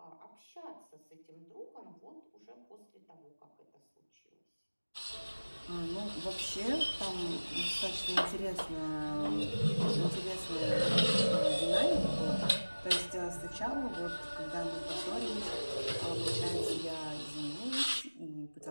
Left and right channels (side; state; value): both; inverted; correlation -1.00